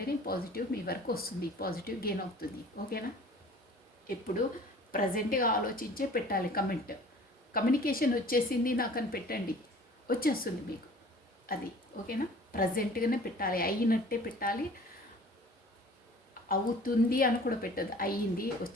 పాజిటివ్ మీ వరకు వస్తుంది, పాజిటివ్ గెయిన్ అవుతుంది. ఓకేనా, ఎప్పుడు ప్రజెంట్గా ఆలోచించే పెట్టాలి కమెంట్. కమ్యూనికేషన్ వచ్చేసింది నాకు అని పెట్టండి, వచ్చేస్తుంది మీకు అది. ఓకేనా, ప్రజెంట్గానే పెట్టాలి, అయినట్టే పెట్టాలి. అవుతుంది అని కూడా పెట్టద్దు, అయ్యింది,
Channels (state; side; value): normal; both; correlation 0.47